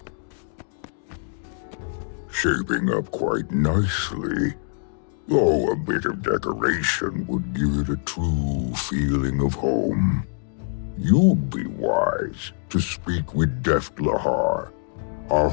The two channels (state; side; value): silent; right; digital silence